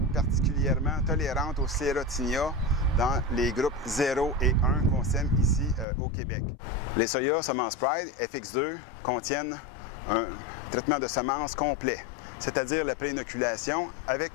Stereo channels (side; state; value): right; drops out; at 5.9 s